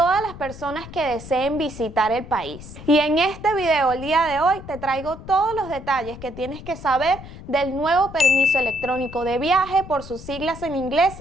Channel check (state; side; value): noise; left; rumble, 14 dB below the sound